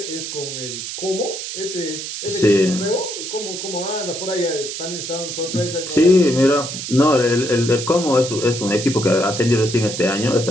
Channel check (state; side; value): noise; right; hiss, 7 dB below the sound